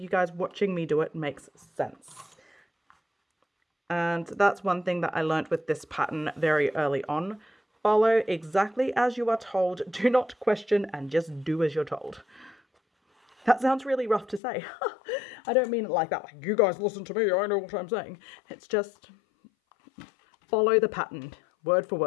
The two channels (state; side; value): drops out; right; at 14.4 s